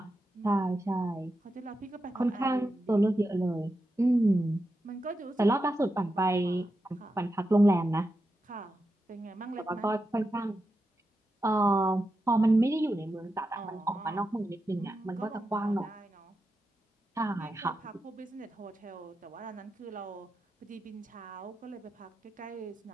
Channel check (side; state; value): both; normal; correlation 0.88